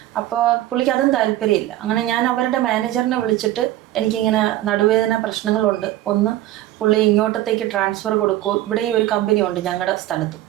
അപ്പോൾ പുള്ളിക്ക് അതും താല്പര്യമില്ല. അങ്ങനെ ഞാൻ അവരുടെ മാനേജറിനെ വിളിച്ചിട്ട് എനിക്കിങ്ങനെ നടുവേദന പ്രശ്നങ്ങളുണ്ട്, ഒന്ന് പുള്ളി ഇങ്ങോട്ടത്തേക്ക് ട്രാൻസ്ഫർ കൊടുക്കൂ, ഇവിടെ ഈ ഒരു കമ്പനി ഉണ്ട് ഞങ്ങളുടെ സ്ഥലത്തും,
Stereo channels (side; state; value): left; quieter; 14.4 dB